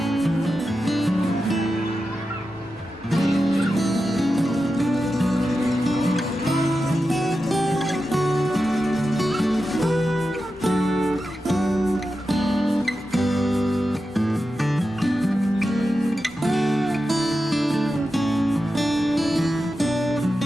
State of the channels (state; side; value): noise; left; rumble, 27 dB below the sound